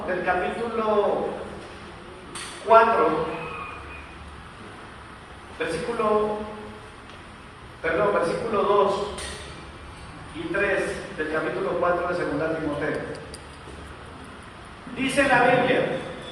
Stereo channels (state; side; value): identical; both; correlation 1.00